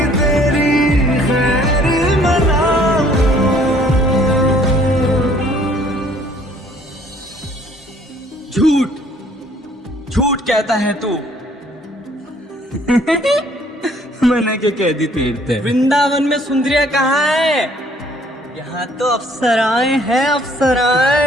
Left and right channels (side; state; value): both; normal; correlation 0.60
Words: तेरी खैर मनाऊं। झूठ झूठ कहता है तू। मैंने क्या कह दी तीर्थ? वृंदावन में सुंदरिया कहाँ है? यहाँ तो अप्सराएं हैं,